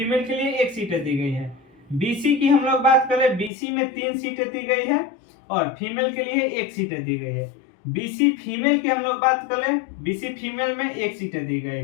के लिए 1 सीट दी गई है। बीसी की हम लोग बात करें, बीसी में 3 सीटें दी गई है और फीमेल के लिए 1 सीट दी गई है। बीसी फीमेल की हम लोग बात करें, बीसी फीमेल में 1 सीट दी गई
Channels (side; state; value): right; drops out; at 3.5 s